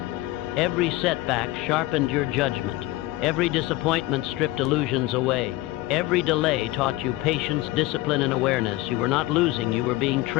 Every setback sharpened your judgment. Every disappointment stripped illusions away. Every delay taught you patience, discipline, and awareness. You were not losing, you were being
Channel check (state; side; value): quieter; right; 17.8 dB